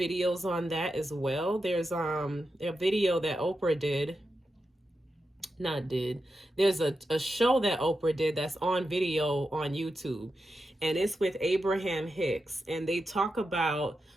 on that as well. There's a video that Oprah did. Not did. There's a show that Oprah did that's on video on YouTube. And it's with Abraham Hicks. And they talk about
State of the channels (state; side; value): normal; both; correlation 0.89